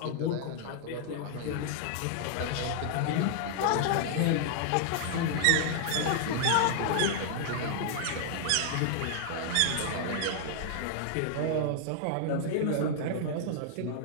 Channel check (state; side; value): different; both; correlation -0.01